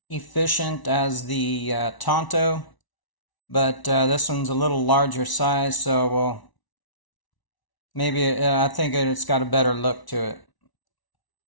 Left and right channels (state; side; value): late; right; 1.0 ms